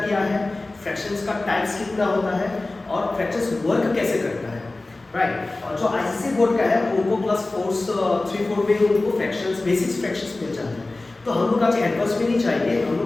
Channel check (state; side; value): quieter; right; 3.0 dB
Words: क्या है, फ्रैक्शंस का टाइप्स कितना होता है और फ्रैक्शंस वर्क कैसे करता है, राइट। और जो आईसीएसई बोर्ड का है उनको क्लास 3-4 में उनको फ्रैक्शंस, बेसिक्स फ्रैक्शंस मिल जाते हैं। तो हम लोग आज एडवांस में नहीं चाहिए, हम